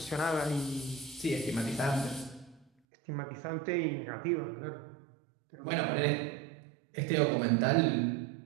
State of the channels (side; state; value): left; drops out; at 2.7 s